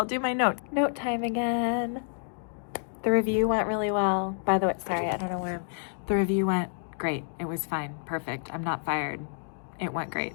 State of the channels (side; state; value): right; silent; digital silence